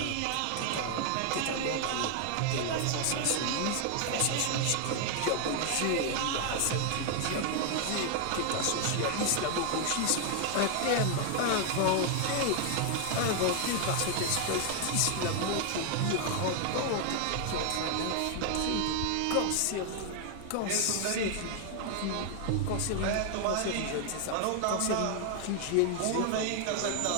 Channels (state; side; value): different; both; correlation 0.00